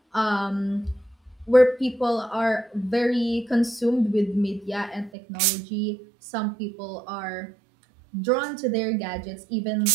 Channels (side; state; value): left; drops out; at 5.1 s